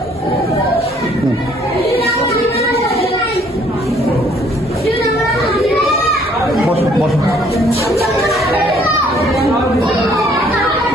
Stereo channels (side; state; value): both; normal; correlation 0.62